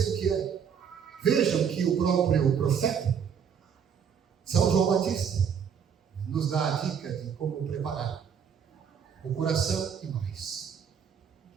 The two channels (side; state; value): left; quieter; 7.5 dB